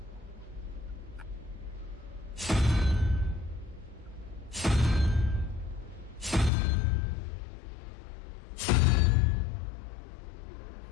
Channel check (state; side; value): drops out; right; at 6.5 s